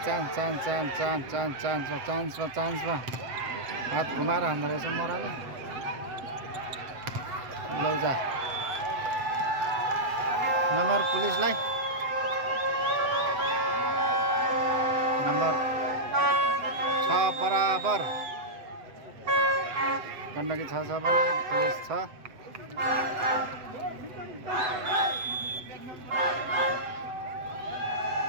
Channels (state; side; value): late; left; 7.8 ms